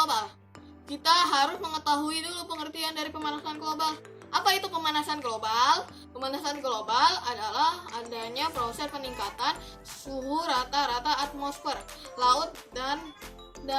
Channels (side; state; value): both; identical; correlation 1.00